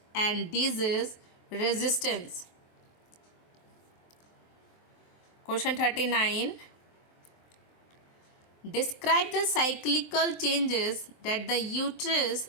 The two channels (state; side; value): late; right; 23 ms